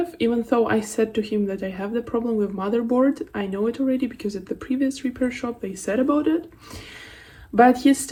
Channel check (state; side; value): identical; both; correlation 1.00